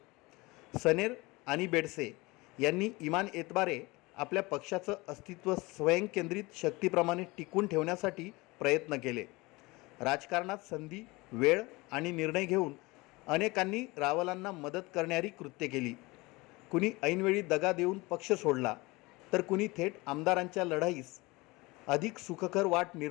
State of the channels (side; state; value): right; quieter; 23.1 dB